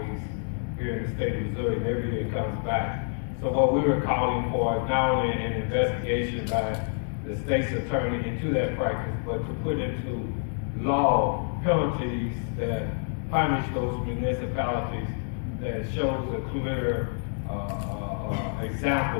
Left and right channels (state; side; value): silent; right; 57 dB below the other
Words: here in the state of Missouri, and every year it comes back. So what we were calling for is not only an investigation by the state's attorney into that practice, but to put into law penalties that punish those municipalities that shows a clear